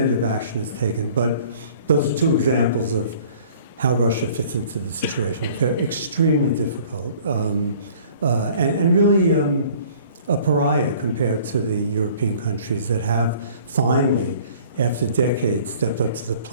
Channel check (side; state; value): both; inverted; correlation -0.52